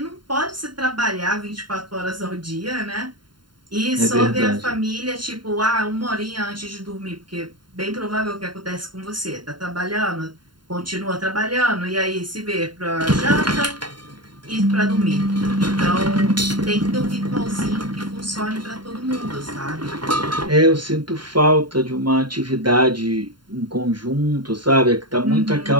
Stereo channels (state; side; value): late; left; 0.72 ms